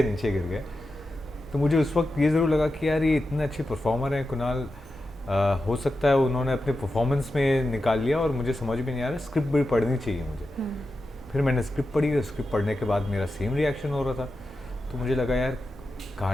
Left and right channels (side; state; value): both; normal; correlation 0.91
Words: नीचे गिर गए। तो मुझे उस वक्त ये ज़रूर लगा कि यार ये इतने अच्छे परफॉर्मर हैं कुणाल। हो सकता है उन्होंने अपने परफॉर्मेंस में निकाल लिया और मुझे समझ भी नहीं आ रहा, स्क्रिप्ट भी पढ़नी चाहिए मुझे। फिर मैंने स्क्रिप्ट पढ़ी और स्क्रिप्ट पढ़ने के बाद मेरा सेम रिएक्शन हो रहा था। तो मुझे लगा यार